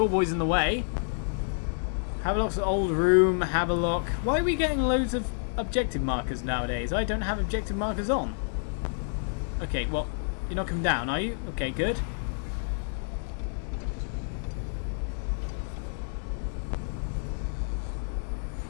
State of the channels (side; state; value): right; silent; digital silence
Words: in the way. Havelock's old room. Havelock. Why are we getting loads of objective markers nowadays? I don't have objective markers on. Okay, well, you're not coming down, are you? Okay, good.